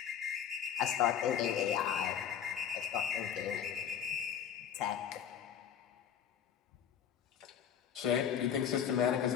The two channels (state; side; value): quieter; right; 8.6 dB